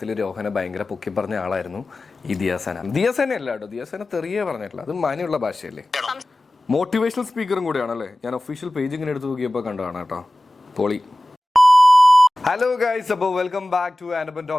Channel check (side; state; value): both; normal; correlation 0.97